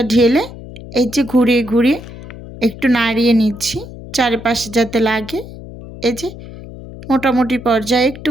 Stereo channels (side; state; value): left; noise; hum, 14 dB below the sound